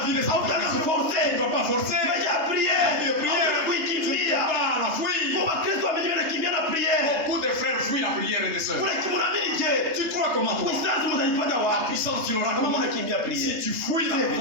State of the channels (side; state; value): left; late; 3.3 ms